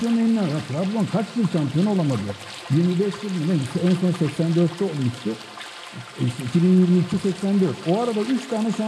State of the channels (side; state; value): both; identical; correlation 1.00